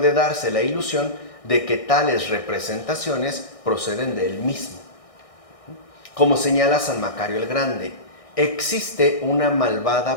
darse la ilusión de que tales representaciones proceden de él mismo. Como señala San Macario el Grande, existe una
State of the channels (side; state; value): right; late; 1.6 ms